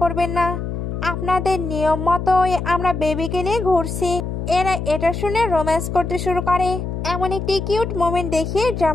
করবেন না, আপনাদের নিয়ম মতোই আমরা বেবিকে নিয়ে ঘুরছি। এরা এটা শুনে রোম্যান্স করতে শুরু করে। এমন একটি কিউট মোমেন্ট দেখিয়ে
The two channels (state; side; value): noise; left; hum, 4 dB below the sound